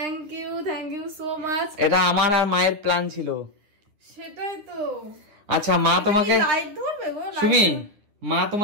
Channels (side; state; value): left; late; 9.8 ms